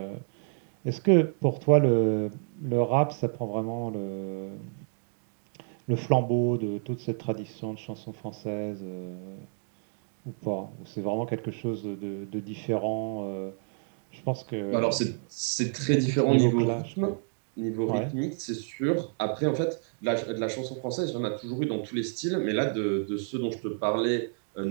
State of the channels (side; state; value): left; silent; 58 dB below the other